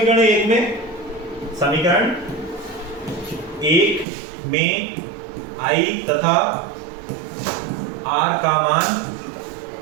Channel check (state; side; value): drops out; left; at 4.0 s